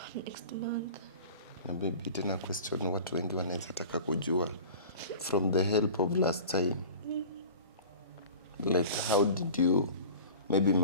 next month. Na baby, tena question watu wengi wanaweza taka kujua from the help of last time. Like how did you maybe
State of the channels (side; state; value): both; inverted; correlation -0.40